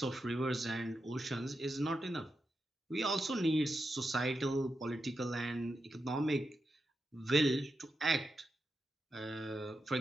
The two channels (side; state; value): both; normal; correlation 0.87